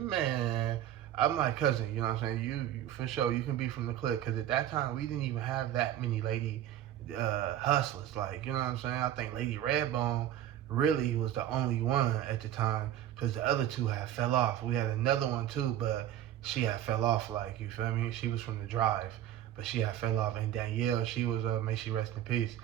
I'm like, cousin, you know what I'm saying? You for sure, you can be from the clique, because at that time, we didn't even have that many Lady Hustlers, like, you know what I'm saying? I think Lady Redbone really was the only one at the time, because the other 2 had fell off. We had another one too, but she had fell off, like, you feel me? She was from the Drive, but she had fell off. And Danielle, she was, may she rest in peace,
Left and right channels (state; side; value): quieter; left; 11.8 dB